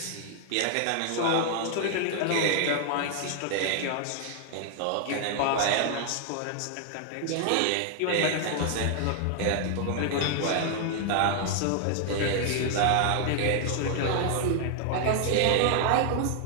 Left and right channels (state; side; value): different; both; correlation 0.00